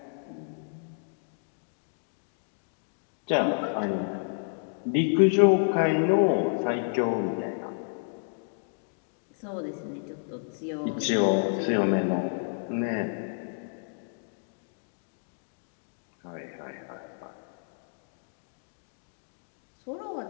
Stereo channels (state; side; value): silent; right; digital silence